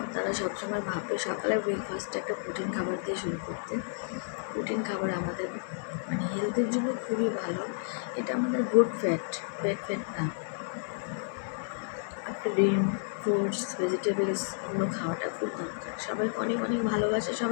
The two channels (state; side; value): silent; right; 57 dB below the other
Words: তারা সবসময় ভাববে সকালে ব্রেকফাস্টটা একটা প্রোটিন খাবার দিয়ে শুরু করতে। প্রোটিন খাবার আমাদের মানে হেলথের জন্য খুবই ভালো। এটা আমাদের গুড ফ্যাট, ব্যাড ফ্যাট না। ডিম, ফ্রুটস, ভেজিটেবলস এগুলো খাওয়াটা খুব দরকার। সবাইকে অনেক অনেক ভালোবাসা,